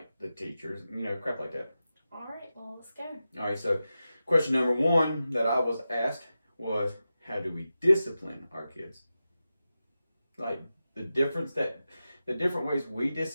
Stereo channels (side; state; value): both; inverted; correlation -0.92